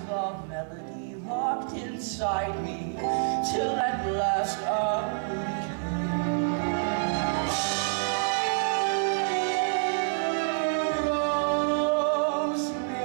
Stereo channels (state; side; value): silent; left; 60 dB below the other